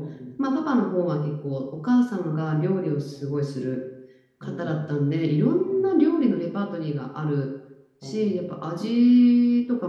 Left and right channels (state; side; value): identical; both; correlation 1.00